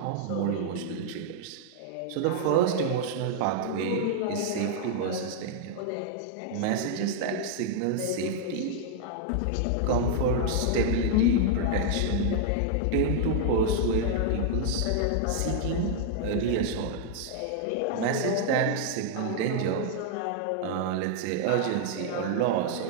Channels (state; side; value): different; both; correlation -0.01